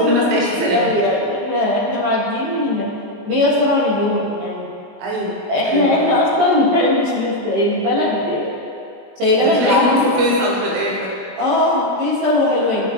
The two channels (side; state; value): left; late; 20 ms